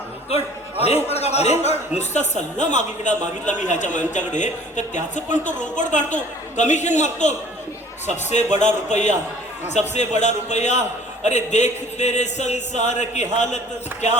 अरे रोकड काढा, अरे रोकड. नुसता सल्ला मागितला मी ह्याच्या यांच्याकडे तर त्याचं पण तो रोकड काढतो, कमिशन मागतो. सबसे बड़ा रुपया, सबसे बड़ा रुपया. अरे देख तेरे संसार की हालत क्या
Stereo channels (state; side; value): normal; both; correlation 0.51